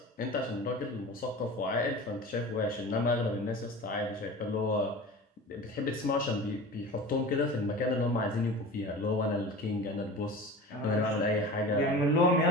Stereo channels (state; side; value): normal; both; correlation 0.35